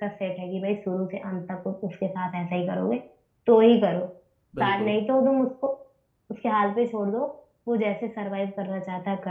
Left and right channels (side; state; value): both; identical; correlation 1.00